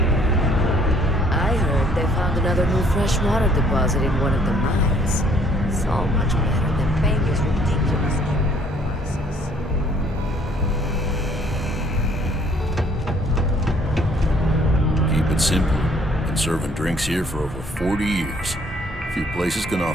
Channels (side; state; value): both; normal; correlation 0.61